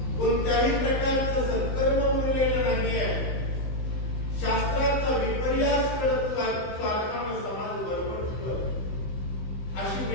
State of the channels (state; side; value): late; right; 15 ms